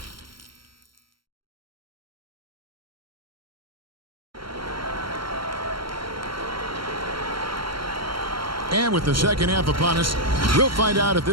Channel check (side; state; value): left; late; 0.73 ms